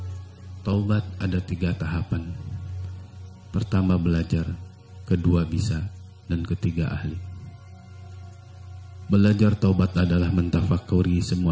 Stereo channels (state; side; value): identical; both; correlation 1.00